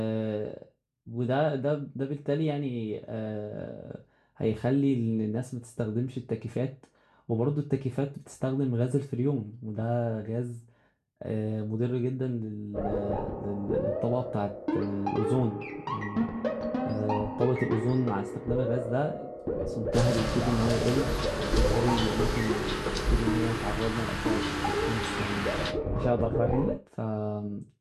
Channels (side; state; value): both; identical; correlation 1.00